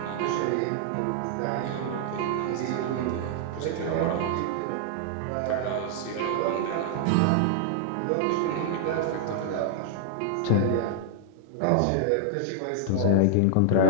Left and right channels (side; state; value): both; different; correlation 0.00